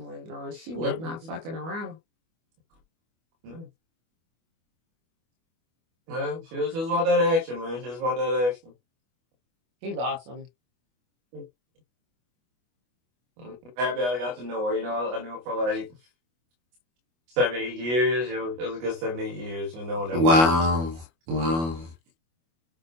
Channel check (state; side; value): late; left; 25 ms